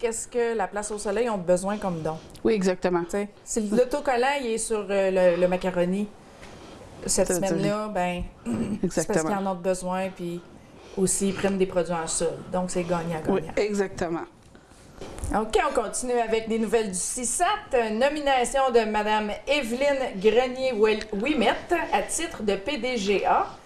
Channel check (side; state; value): both; identical; correlation 1.00